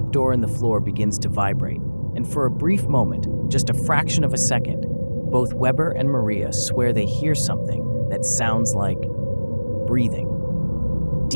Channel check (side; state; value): both; inverted; correlation -1.00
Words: in the floor begins to vibrate, and for a brief moment, just a fraction of a second, both Weber and Maria swear they hear something that sounds like breathing.